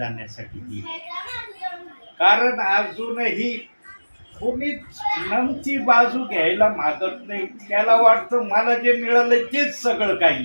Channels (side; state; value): both; inverted; correlation -1.00